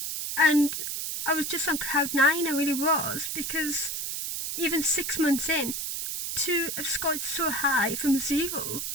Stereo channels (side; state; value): right; noise; hiss, 3 dB below the sound